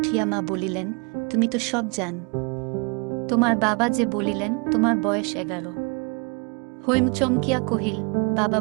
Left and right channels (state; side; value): quieter; left; 33.0 dB